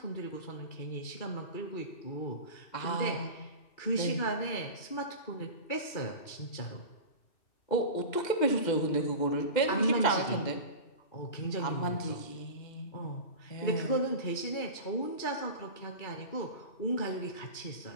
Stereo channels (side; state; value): right; late; 2.7 ms